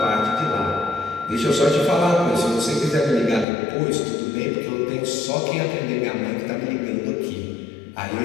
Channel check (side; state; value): right; drops out; at 3.5 s